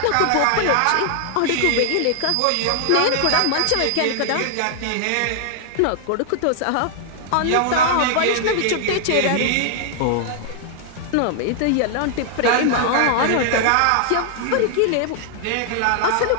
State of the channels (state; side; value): different; both; correlation 0.00